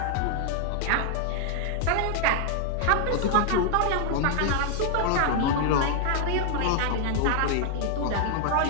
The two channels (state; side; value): different; both; correlation 0.00